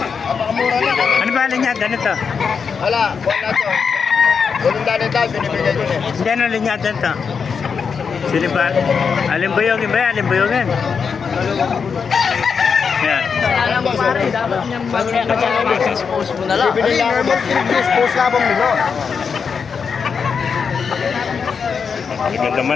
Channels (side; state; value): right; quieter; 6.0 dB